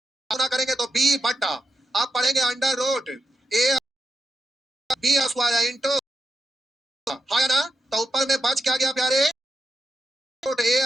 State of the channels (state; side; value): normal; both; correlation 0.86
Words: गुना करेंगे तो बी बट्टा, आप पढ़ेंगे under root A B square into, हाँ ना? तो ऊपर में बच क्या गया प्यारे? रूट